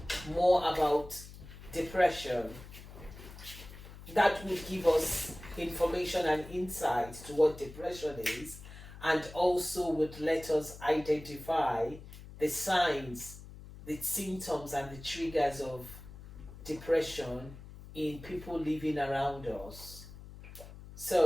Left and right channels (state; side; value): noise; left; hum, 15 dB below the sound